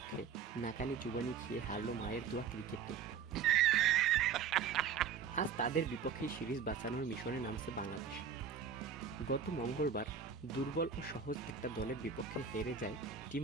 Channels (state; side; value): quieter; left; 6.8 dB